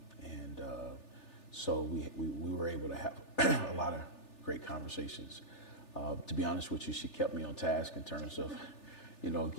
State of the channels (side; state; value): right; late; 3.4 ms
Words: and so we were able to have a lot of great conversations. To be honest with you, she kept me on task in terms of